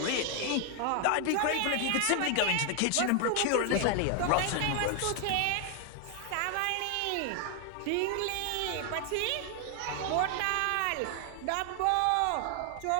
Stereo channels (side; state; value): both; different; correlation 0.00